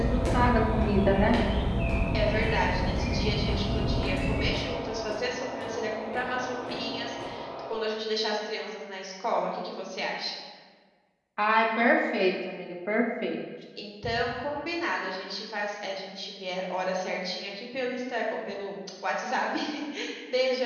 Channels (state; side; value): identical; both; correlation 1.00